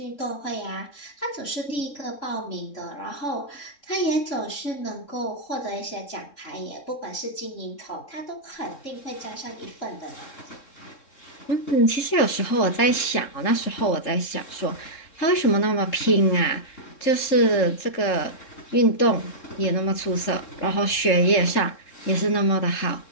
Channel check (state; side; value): late; right; 3.7 ms